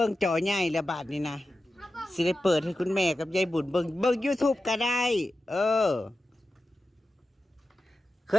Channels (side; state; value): both; normal; correlation 0.93